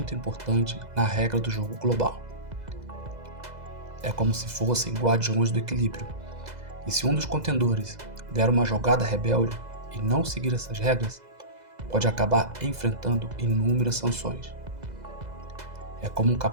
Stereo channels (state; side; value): late; left; 2.0 ms